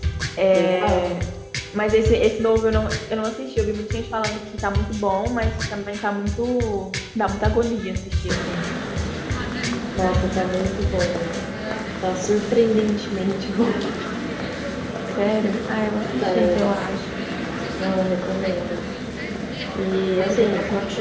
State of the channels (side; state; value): both; identical; correlation 1.00